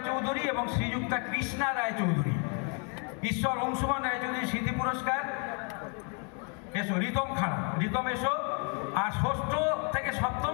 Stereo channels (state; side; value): quieter; right; 36.6 dB